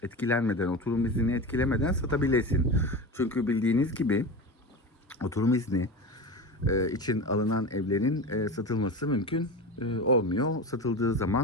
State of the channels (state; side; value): normal; both; correlation 0.26